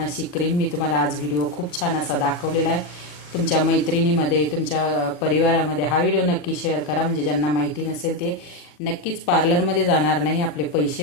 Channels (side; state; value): right; late; 40 ms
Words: अशी क्रीम मी तुम्हाला आज व्हिडिओ खूप छान असा दाखवलेला आहे. तुमच्या मैत्रिणीमध्ये, तुमच्या परिवारामध्ये हा व्हिडिओ नक्की शेअर करा, म्हणजे ज्यांना माहिती नसेल ते नक्कीच पार्लरमध्ये जाणार नाही, आपले